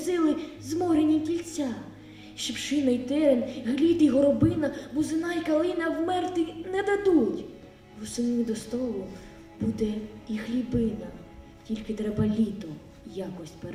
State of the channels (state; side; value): identical; both; correlation 1.00